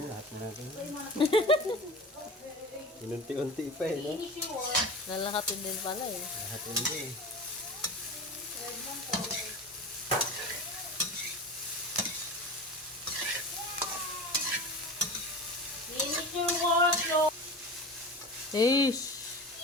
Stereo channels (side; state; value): both; normal; correlation 0.32